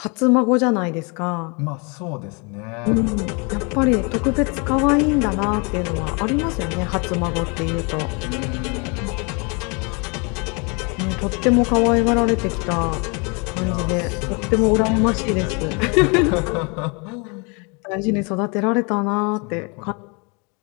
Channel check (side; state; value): right; quieter; 31.9 dB